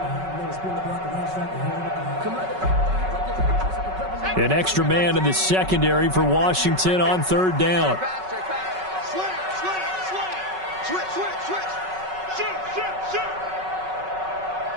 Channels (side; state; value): left; late; 5.3 ms